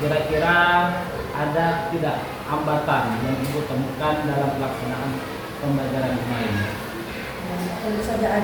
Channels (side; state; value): both; identical; correlation 1.00